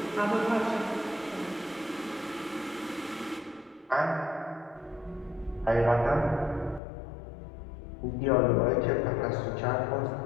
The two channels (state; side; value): drops out; right; at 6.8 s